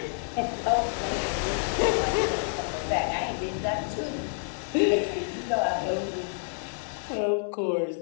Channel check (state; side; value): silent; right; 57 dB below the other